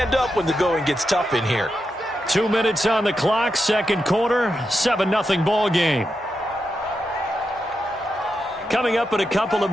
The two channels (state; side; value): normal; both; correlation 0.87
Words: up when the going gets tough in here. 2 minutes on the clock, second quarter, 7-0 ball game. Coming up in a couple of